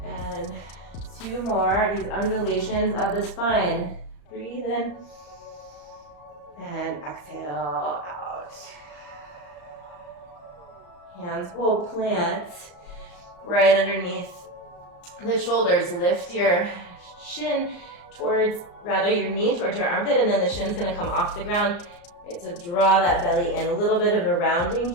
2 more. These undulations of the spine. Breathe in. And exhale out. Hands will plant right underneath the shoulders. Lift your shin towards, rather your knee towards your armpit, and then the shin's gonna come off the ground. Right, so draw that belly in. A little bit of a rounding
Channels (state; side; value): late; right; 34 ms